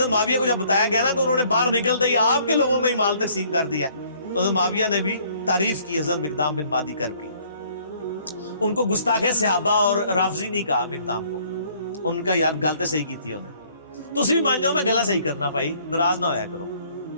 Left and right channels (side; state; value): both; inverted; correlation -0.61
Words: معاویہ کو جب بتایا گیا نا کہ انہوں نے باہر نکلتے ہی آپ کے لوگوں میں ہی مال تقسیم کر دیا، تو حضرت معاویہ نے بھی تعریف کی حضرت مقدام بن مادی کرب کی۔ ان کو گستاخ صحابہ اور رافضی نہیں کہا مقدام کو، ان کا یار گل تو صحیح کی تھی انہیں، تو اسی بھی مان جاؤ میں گلا صحیح کرنا بھائی، ناراض نہ ہویا کرو۔